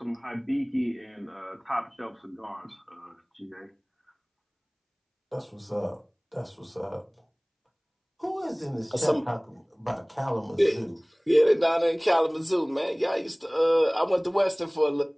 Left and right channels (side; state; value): both; identical; correlation 1.00